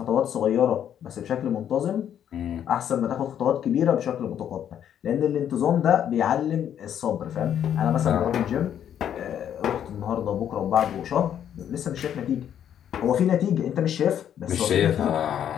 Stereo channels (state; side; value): quieter; right; 9.6 dB